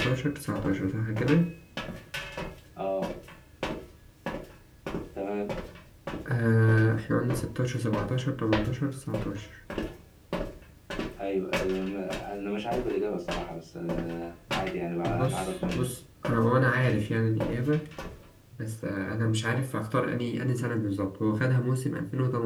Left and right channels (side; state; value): both; identical; correlation 1.00